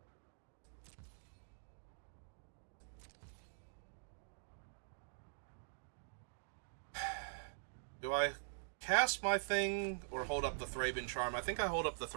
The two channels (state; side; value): silent; left; digital silence